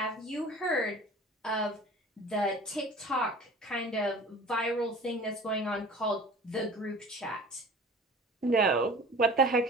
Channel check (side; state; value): both; normal; correlation 0.42